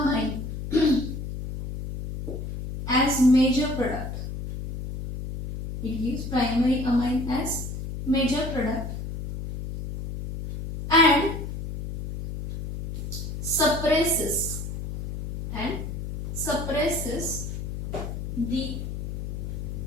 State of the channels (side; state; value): left; noise; hum, 6 dB below the sound